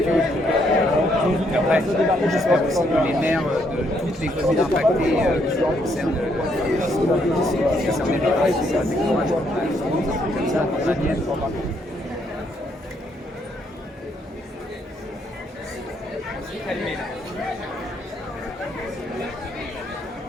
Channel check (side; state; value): both; normal; correlation 0.73